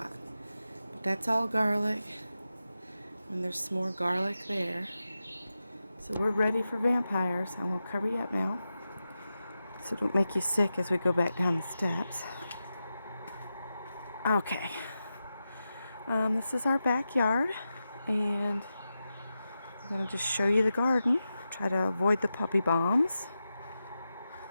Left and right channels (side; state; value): both; inverted; correlation -0.91